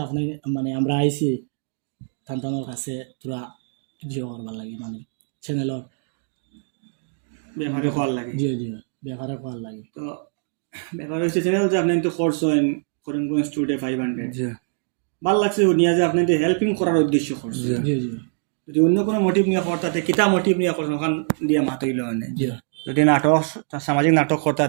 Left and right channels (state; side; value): silent; left; 63 dB below the other